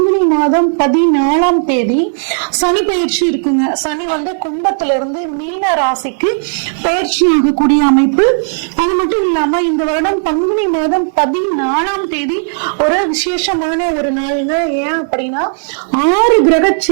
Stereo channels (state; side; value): silent; left; digital silence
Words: மாதம் 14ஆம் தேதி சனி பயிற்சி இருக்குங்க. சனி வந்து கும்பத்துல இருந்து மீன ராசிக்கு பயிற்சி ஆகக்கூடிய அமைப்பு. அது மட்டும் இல்லாம இந்த வருடம் பங்குனி மாதம் 14ஆம் தேதி ஒரு விசேஷமான ஒரு நாளுங்க. ஏன் அப்படின்னா 6 கிரக